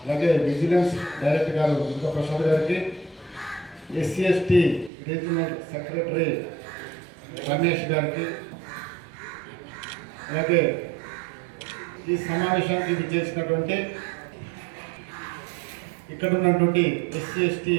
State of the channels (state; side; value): drops out; left; at 4.9 s